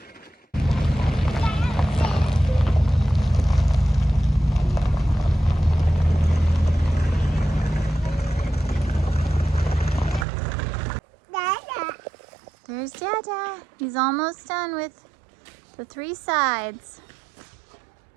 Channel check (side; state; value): left; drops out; at 10.2 s